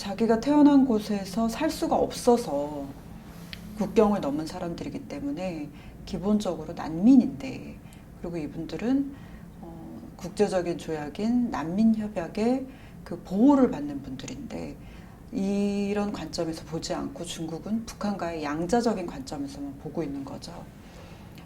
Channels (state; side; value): identical; both; correlation 1.00